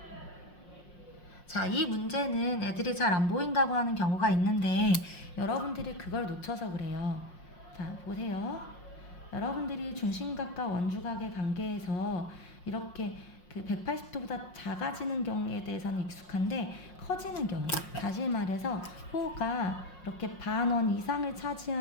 자, 이 문제는 애들이 잘 안 보인다고 하는 경우가 있는데 여러분들이 그걸 놓쳐서 그래요. 자, 보세요. 여러분들이 중심각과 원주각의 관계에서 이렇게 그 180도보다 작아지는 경우에 대해서는 익숙한데 커지는 경우, 다시 말해서 호가 이렇게 반원 이상을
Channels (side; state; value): right; late; 5.6 ms